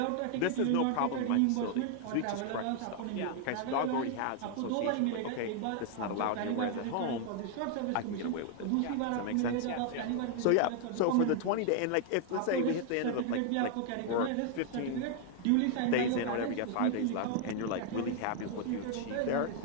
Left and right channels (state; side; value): different; both; correlation 0.00